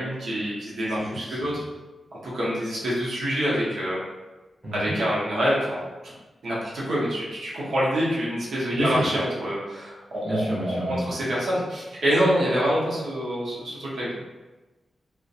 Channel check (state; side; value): normal; both; correlation 0.87